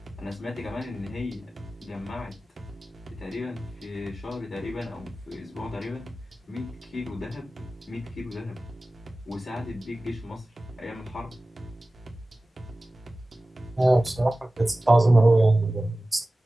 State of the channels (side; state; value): both; normal; correlation 0.96